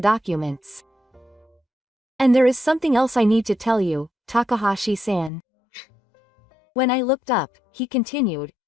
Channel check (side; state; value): right; drops out; at 5.3 s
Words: documents. "And there is something else I need to tell you, Takahashi-san." When I looked up, he continued,